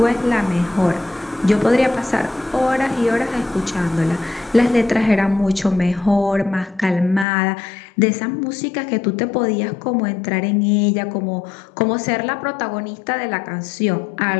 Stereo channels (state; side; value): drops out; right; at 7.2 s